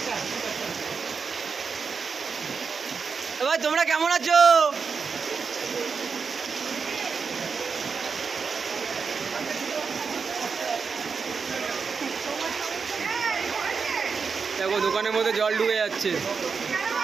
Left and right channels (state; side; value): quieter; left; 5.4 dB